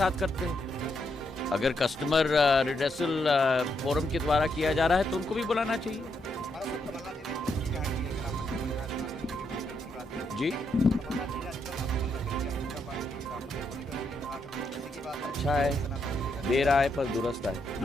करते हैं, अगर कस्टमर रिड्रेसल फोरम के द्वारा किया जा रहा है तो उनको भी बुलाना चाहिए। जी, अच्छा है, देर आए पर दुरुस्त आए।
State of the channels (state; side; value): normal; both; correlation 0.79